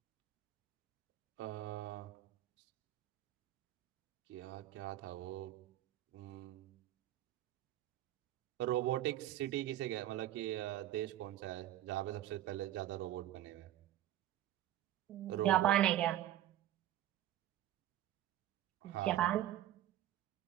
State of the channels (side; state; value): left; quieter; 13.2 dB